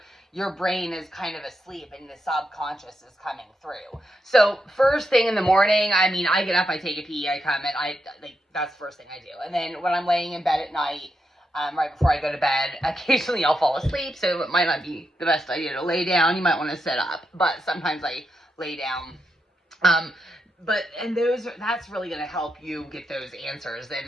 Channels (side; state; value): both; normal; correlation 0.85